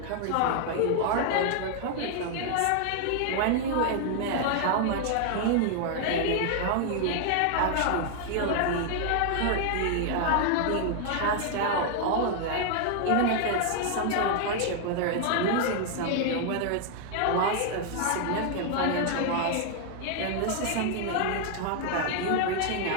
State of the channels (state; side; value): different; both; correlation 0.00